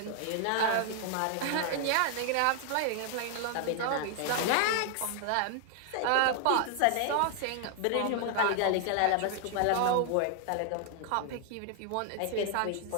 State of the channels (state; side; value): different; both; correlation 0.00